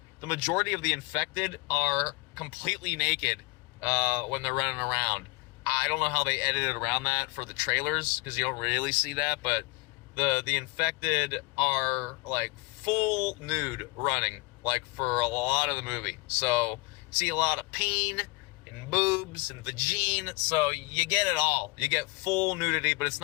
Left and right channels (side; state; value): right; quieter; 26.4 dB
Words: majority of the infected are completely naked when they're running around. I don't know how they edited around that for the trailers, because you don't really see that, but the infected are like full nude running, like, for a lot of the movie. So see a lot of peen and boobs and vagine, so you get it all. You get full nudity, but it's